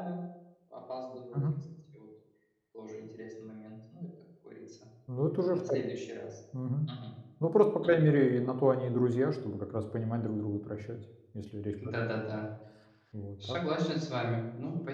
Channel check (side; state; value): both; identical; correlation 1.00